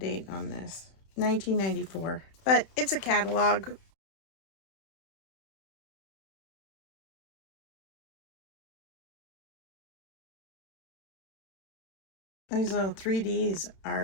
on this. 1994. But it's a catalog. These little 3Ds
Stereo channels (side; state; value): right; late; 31 ms